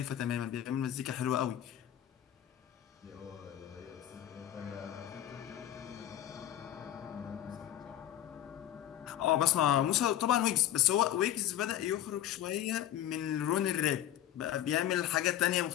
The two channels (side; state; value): right; quieter; 12.0 dB